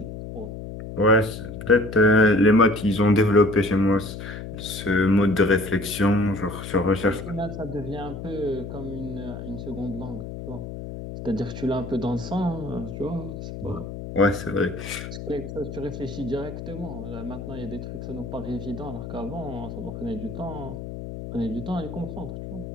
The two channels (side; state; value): left; noise; hum, 9 dB below the sound